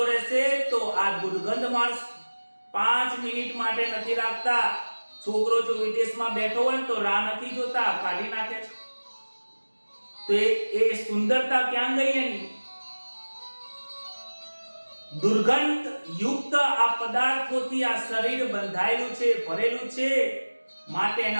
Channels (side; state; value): both; inverted; correlation -1.00